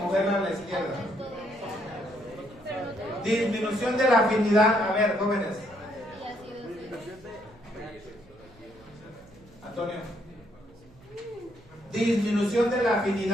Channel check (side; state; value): right; noise; hum, 26 dB below the sound